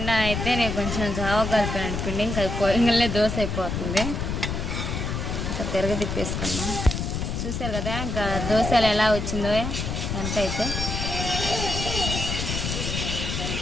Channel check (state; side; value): noise; left; rumble, 3 dB below the sound